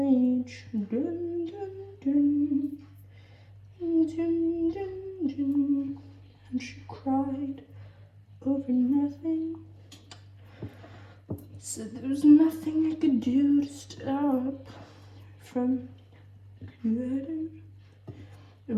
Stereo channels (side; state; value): both; identical; correlation 1.00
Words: Dun, dun, dun. Dun, dun, dun. And she cried over nothing. Said there was nothing I could do to stop from getting a